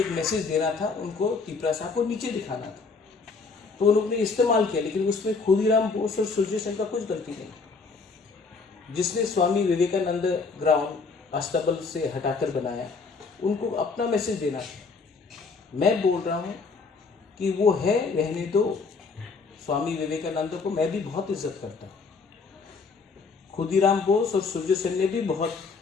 मैसेज देना था, उनको त्रिपुरा साहब को नीचे दिखाना था, तो उन्होंने इस्तेमाल किया। लेकिन उसमें खुदीराम बोस और सूर्य सेन का कुछ गलती नहीं। जिसने स्वामी विवेकानंद ग्राउंड अस्तबल से हटाकर बनाया, उनको अपना मैसेज देना था। मैं बोल रहा हूँ कि वो है, रहने दो। स्वामी विवेकानंद को मैं भी बहुत इज्जत करता हूँ। खुदीराम बोस और सूर्य सेन ने भी बहुत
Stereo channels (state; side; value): quieter; right; 4.6 dB